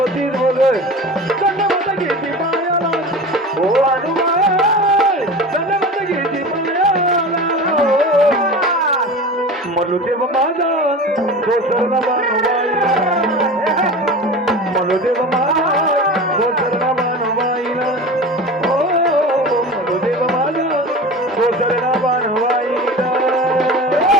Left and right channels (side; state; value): both; normal; correlation 0.33